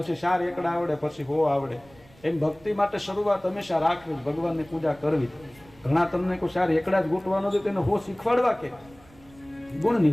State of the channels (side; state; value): right; noise; rumble, 26 dB below the sound